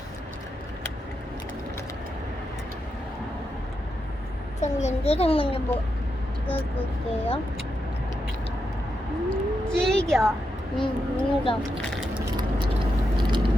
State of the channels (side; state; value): both; normal; correlation 0.85